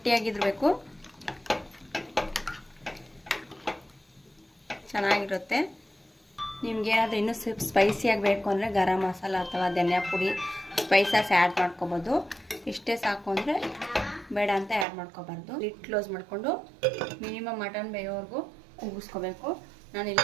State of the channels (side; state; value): left; drops out; at 14.9 s